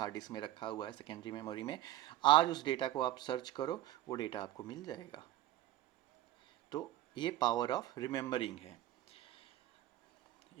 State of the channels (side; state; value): left; quieter; 14.6 dB